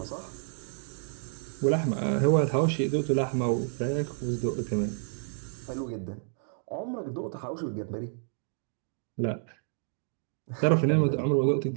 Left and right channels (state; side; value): silent; left; digital silence